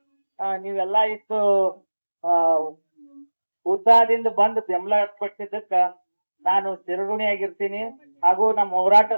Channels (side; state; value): both; inverted; correlation -1.00